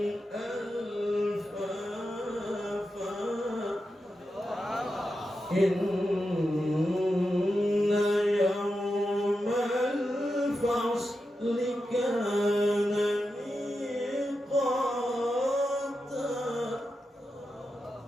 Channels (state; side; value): normal; both; correlation 0.89